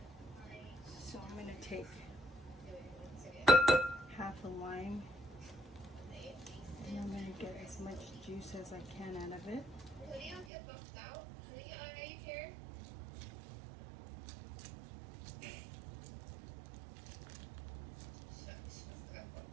So I'm going to take half a lime, and I'm going to get as much juice as I can out of it. Get booked out. Are you here?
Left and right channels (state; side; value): drops out; left; at 10.5 s